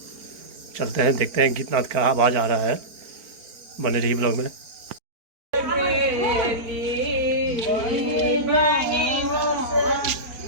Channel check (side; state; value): left; late; 4.5 ms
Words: चलते हैं, देखते हैं गीतनाद का आवाज़ आ रहा है। बने रहिए ब्लॉग में।